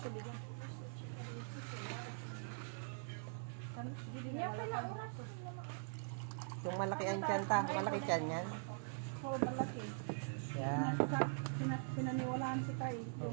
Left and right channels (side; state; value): left; silent; digital silence